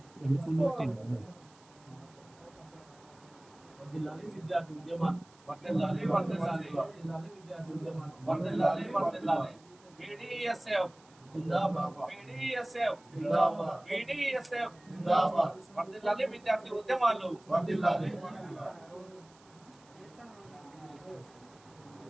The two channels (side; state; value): right; noise; hiss, 28 dB below the sound